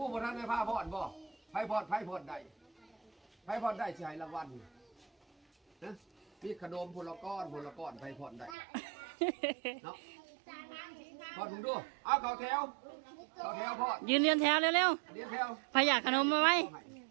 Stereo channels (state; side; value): drops out; left; at 8.6 s